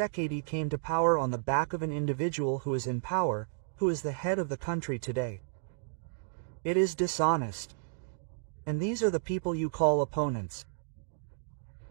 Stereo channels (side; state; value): left; silent; digital silence